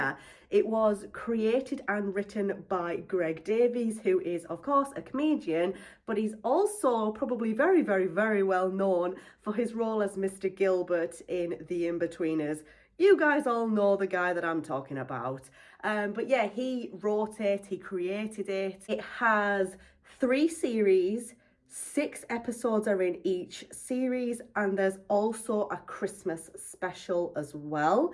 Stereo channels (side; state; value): both; identical; correlation 1.00